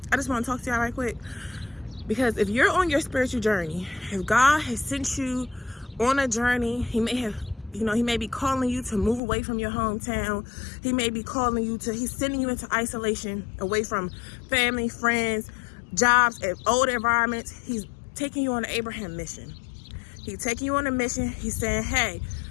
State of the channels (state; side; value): drops out; right; at 9.2 s